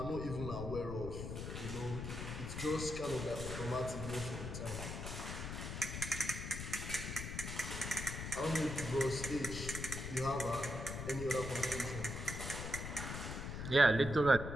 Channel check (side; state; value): left; noise; rumble, 5 dB below the sound